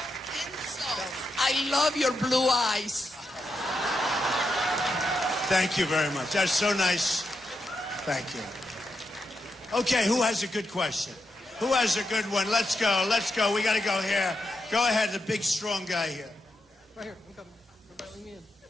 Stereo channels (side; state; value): both; normal; correlation 0.85